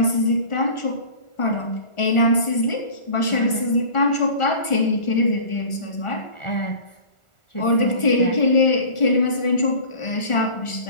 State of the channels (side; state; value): right; late; 1.4 ms